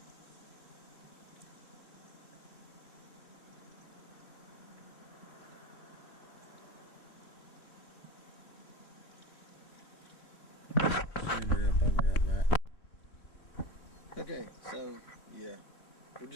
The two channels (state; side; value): late; right; 3.7 ms